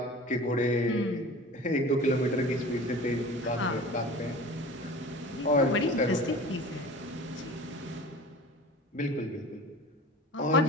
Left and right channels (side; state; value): both; normal; correlation 0.39